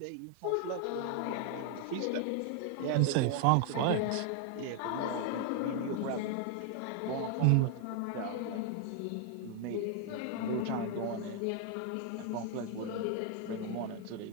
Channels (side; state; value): both; different; correlation 0.00